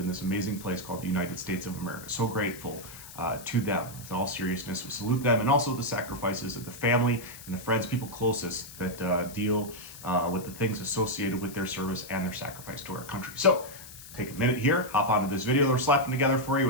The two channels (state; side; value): noise; left; hiss, 15 dB below the sound